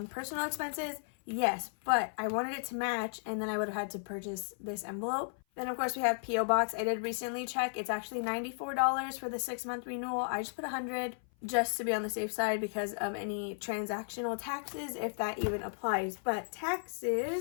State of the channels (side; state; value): right; silent; 55 dB below the other